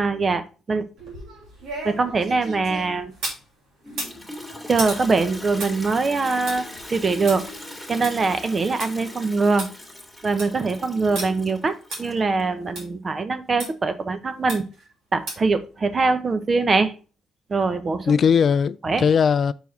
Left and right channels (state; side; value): normal; both; correlation 0.84